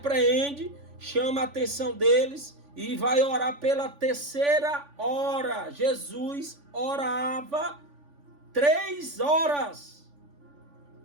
chama a atenção deles e vai orar pela 3ª hora. Jesus orava 3 horas.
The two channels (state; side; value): late; left; 3.5 ms